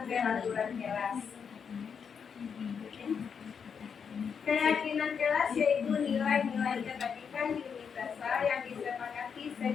peraturan kelas? Keyakinan kelas yaitu nilai-nilai kebaikan universal yang disepakati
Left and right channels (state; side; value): quieter; right; 6.7 dB